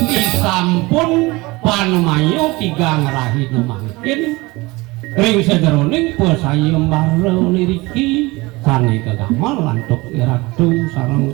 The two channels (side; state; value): left; quieter; 22.7 dB